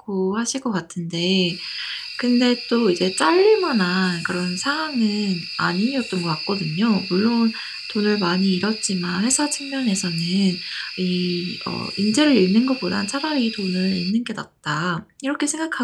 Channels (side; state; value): both; identical; correlation 1.00